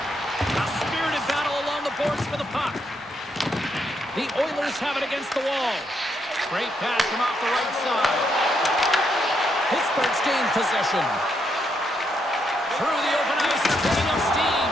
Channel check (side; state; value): both; normal; correlation 0.78